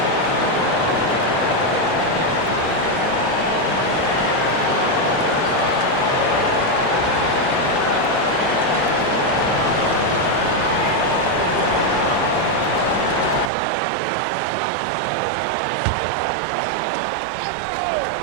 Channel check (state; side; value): drops out; left; at 13.5 s